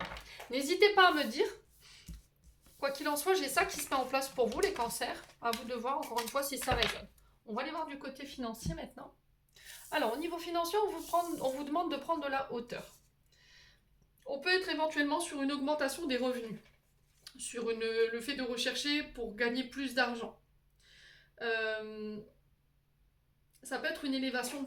n'hésitez pas à me dire. Quoi qu'il en soit, j'ai ça qui se met en place pour vous, les cancers. À vous de voir, encore une fois, si ça résonne. On va aller voir du côté financier maintenant. Alors, au niveau financier, on vous demande de prendre de la hauteur. On peut être éventuellement sur une augmentation des revenus, sur le fait de rechercher pour gagner plus d'argent. Euh, Ça peut être une élévation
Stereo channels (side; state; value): both; identical; correlation 1.00